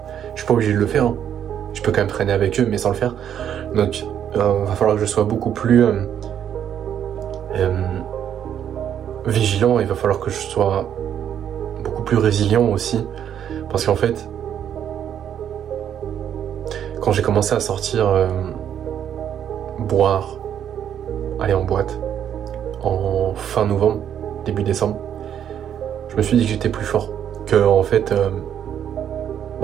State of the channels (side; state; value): left; quieter; 9.4 dB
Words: je suis pas obligé de le faire, hein. Je peux quand même traîner avec eux mais sans le faire. Donc va falloir que je sois beaucoup plus vigilant, il va falloir que je sois beaucoup plus résilient aussi. Parce qu'en fait, quand j'ai commencé à sortir boire, aller en boîte en fin novembre, début décembre, je me suis dit que j'étais plus fort, que en fait